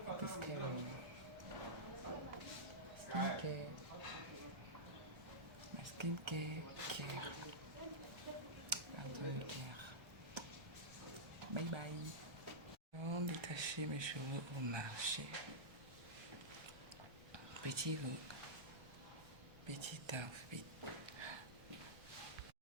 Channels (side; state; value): left; late; 1.3 ms